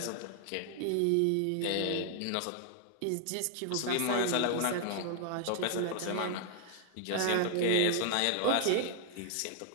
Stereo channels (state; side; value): different; both; correlation 0.00